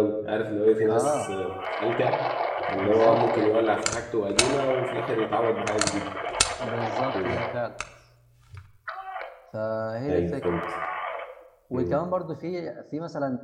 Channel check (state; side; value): identical; both; correlation 1.00